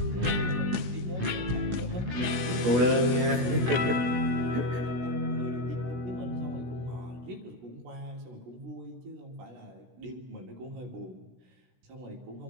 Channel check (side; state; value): left; late; 16 ms